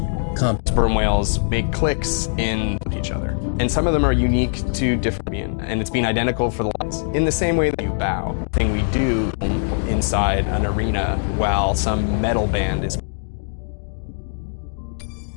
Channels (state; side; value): silent; right; digital silence